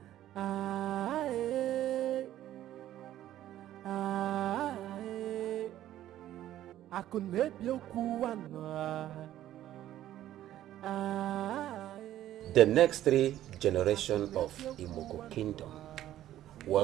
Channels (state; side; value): quieter; left; 12.8 dB